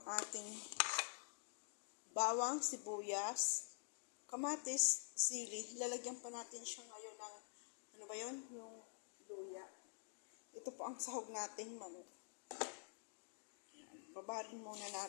bawang, sibuyas, kamatis, sili. Lalagyan pa natin siya ngayon ng, ano ba yun? Yung luya. Ito po ang sahog nating manok. Yan. Babarin muna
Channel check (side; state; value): right; silent; digital silence